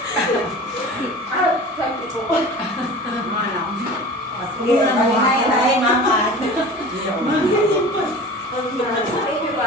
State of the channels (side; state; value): both; normal; correlation 0.37